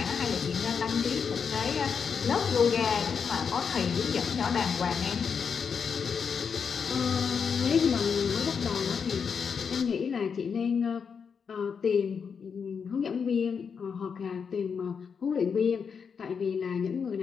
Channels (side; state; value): right; quieter; 6.3 dB